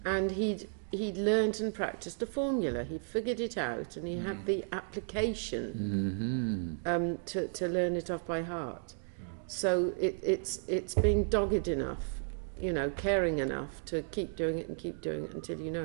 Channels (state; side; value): silent; left; digital silence